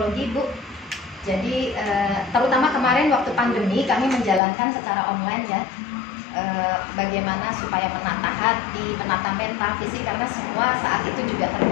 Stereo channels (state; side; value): drops out; right; at 4.4 s